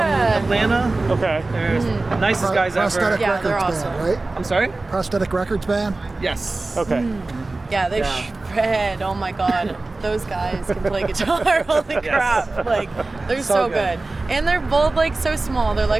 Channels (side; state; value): left; quieter; 3.2 dB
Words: Okay. They're nicest guys ever. Prosthetic Yeah, they're Records awesome. band, right? I'm sorry? Prosthetic Records band. Yes. Okay. Yeah, they shred. Oh my god. Those guys can play guitar. Holy crap. Like, they're so good. And they're both like so small. They're